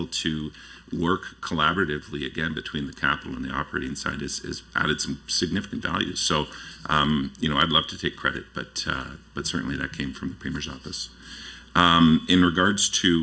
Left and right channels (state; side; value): identical; both; correlation 1.00